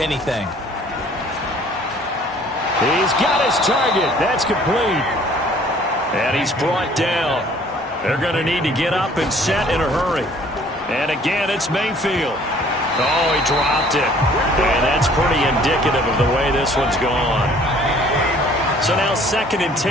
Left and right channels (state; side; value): normal; both; correlation 0.55